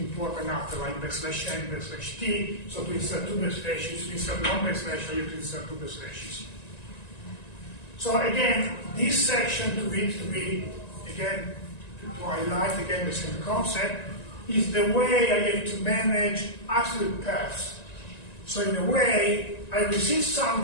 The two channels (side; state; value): right; late; 1.9 ms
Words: after, like backslash n, backslash t. So to insert two backslashes, to insert one backslash, I have to insert two backslashes. So again, this section to be again, to highlight again the same concept, is the way I have to manage absolute paths. So in a way, I receive